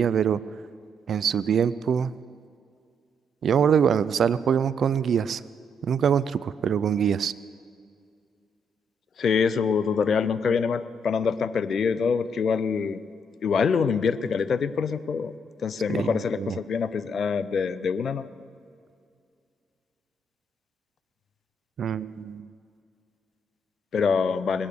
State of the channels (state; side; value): normal; both; correlation 0.73